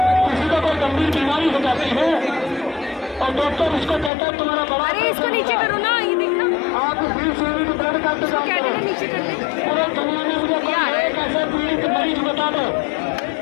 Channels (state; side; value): drops out; right; at 4.1 s